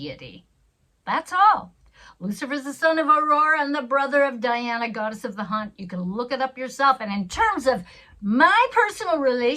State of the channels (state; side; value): identical; both; correlation 1.00